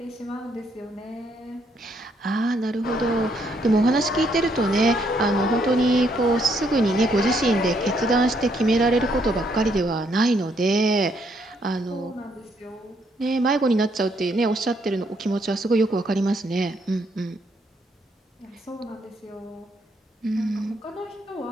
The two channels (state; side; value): normal; both; correlation 0.72